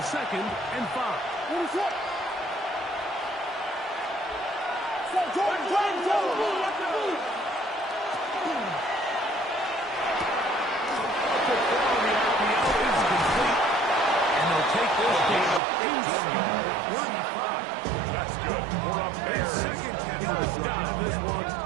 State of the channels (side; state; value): left; drops out; at 15.6 s